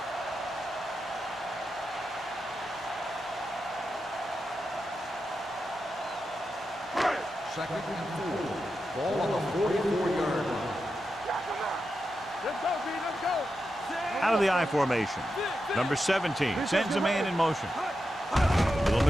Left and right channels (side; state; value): both; normal; correlation 0.88